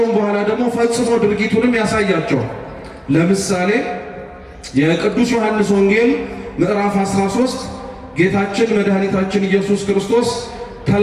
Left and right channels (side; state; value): both; identical; correlation 1.00